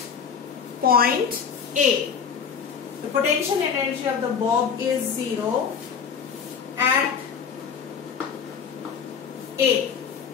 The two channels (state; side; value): quieter; right; 6.7 dB